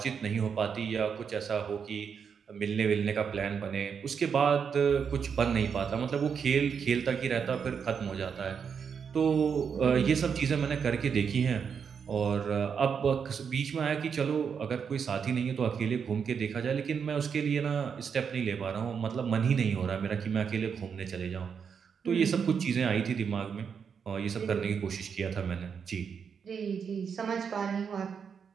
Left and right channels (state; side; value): quieter; left; 6.7 dB